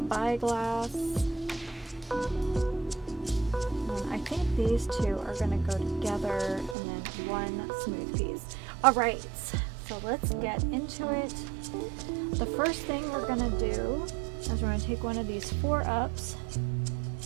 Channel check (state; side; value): drops out; left; at 6.8 s